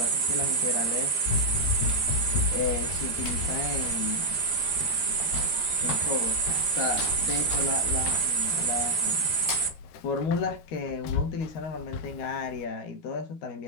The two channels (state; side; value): late; right; 12 ms